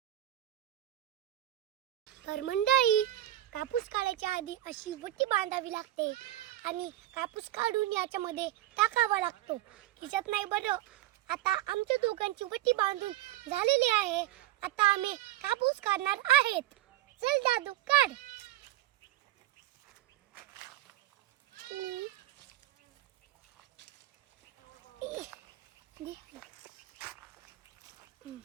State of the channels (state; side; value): quieter; left; 14.6 dB